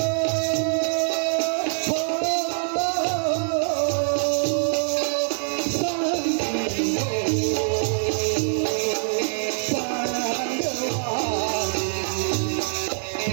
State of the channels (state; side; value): silent; left; 59 dB below the other